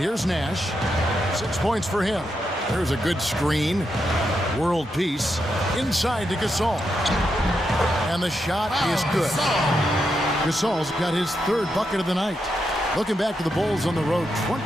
Nash. 6 points for him. There's a good screen. World Peace. Inside to Gasol. And the shot is good. Gasol's got his 3rd bucket of the night. Looking back to the Bulls on the road,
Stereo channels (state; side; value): normal; both; correlation 0.84